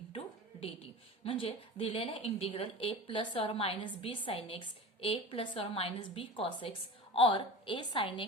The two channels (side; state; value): both; normal; correlation 0.33